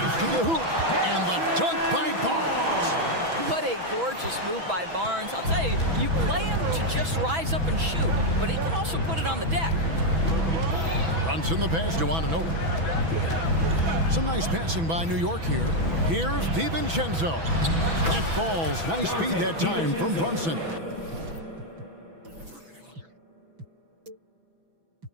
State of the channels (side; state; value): left; late; 6.1 ms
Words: to the hoop. And the dunk by Barnes. What a gorgeous move by Barnes. I'll tell you, you play him to just rise up and shoot, but he can also put it on the deck. Brunson the pass to Anunoby. Some nice passing by New York here. Here's DiVincenzo. That falls. Nice speed that time from Brunson.